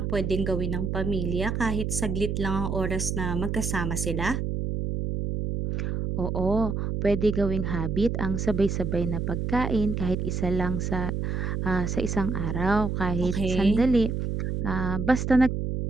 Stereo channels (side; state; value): right; noise; hum, 1 dB below the sound